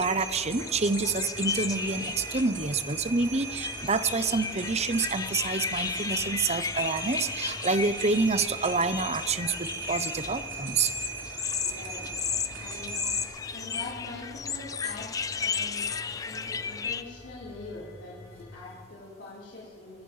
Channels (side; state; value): both; normal; correlation 0.14